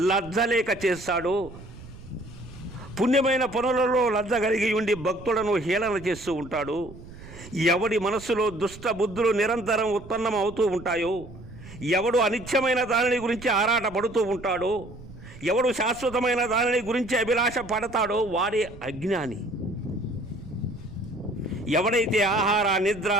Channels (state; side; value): noise; right; rumble, 17 dB below the sound